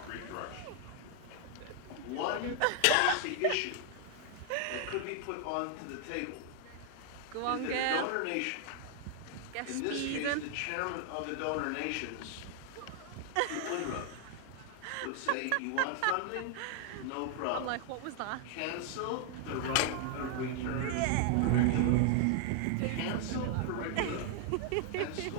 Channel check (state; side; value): different; both; correlation 0.00